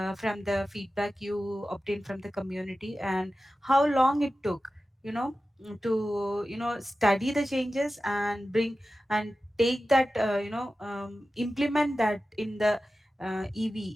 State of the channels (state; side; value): normal; both; correlation 0.94